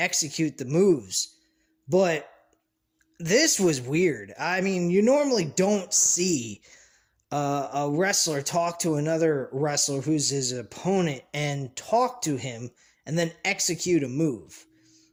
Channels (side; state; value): both; identical; correlation 1.00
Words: the moves. But this was weird. I mean, you normally don't see a wrestler talk to another wrestler who's his opponent and talk to him and then execute a move.